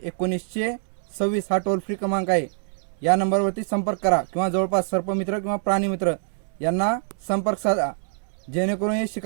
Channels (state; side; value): silent; left; 62 dB below the other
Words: 1926 हा टोल फ्री क्रमांक आहे. या नंबरवरती संपर्क करा किंवा जवळपास सर्पमित्र किंवा प्राणीमित्र यांना संपर्क साधा, जेणेकरून हे